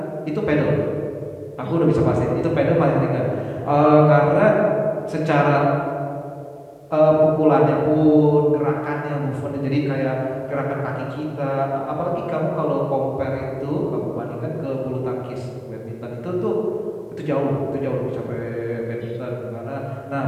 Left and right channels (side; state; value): both; identical; correlation 1.00